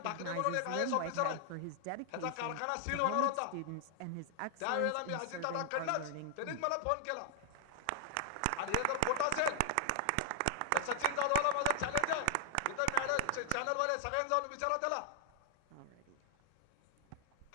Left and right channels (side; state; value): both; different; correlation 0.00